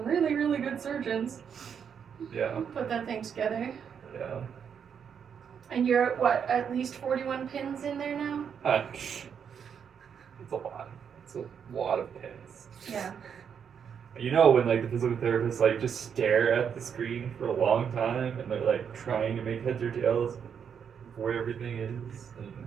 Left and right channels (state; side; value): quieter; left; 7.5 dB